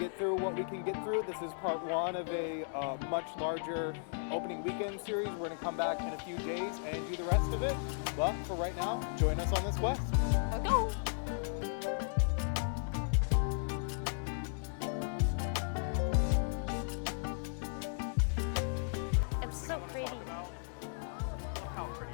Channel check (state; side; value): silent; right; digital silence